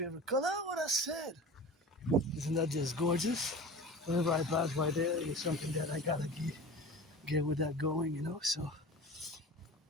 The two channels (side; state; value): both; normal; correlation 0.35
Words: color. What I said. Isn't that just gorgeous? Whenever I pass by there, it's something that I gotta get with that going, So